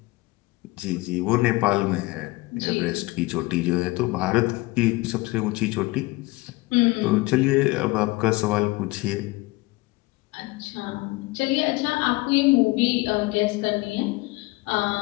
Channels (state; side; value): quieter; right; 22.2 dB